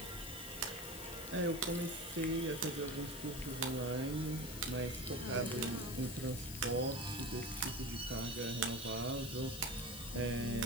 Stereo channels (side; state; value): left; noise; hiss, 10 dB below the sound